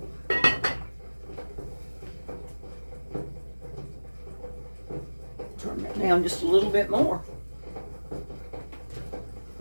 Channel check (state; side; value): inverted; both; correlation -1.00